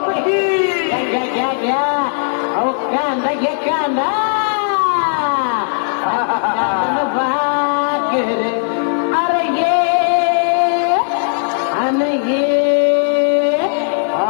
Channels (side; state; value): right; silent; 69 dB below the other